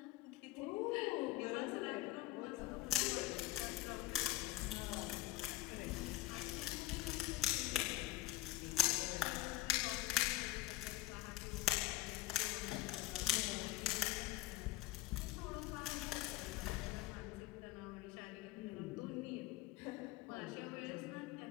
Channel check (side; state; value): right; quieter; 16.8 dB